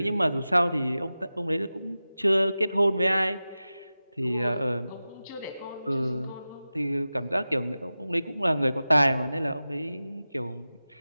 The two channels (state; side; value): inverted; both; correlation -0.95